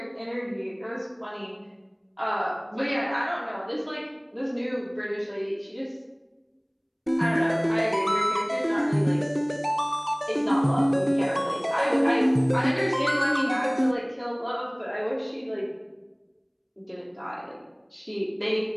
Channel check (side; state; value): both; identical; correlation 1.00